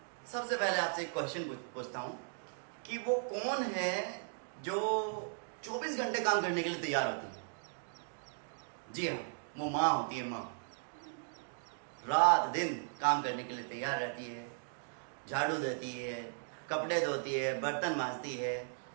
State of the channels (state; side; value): silent; left; digital silence